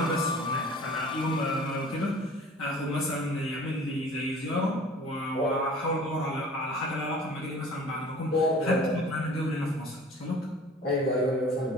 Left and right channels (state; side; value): normal; both; correlation 0.46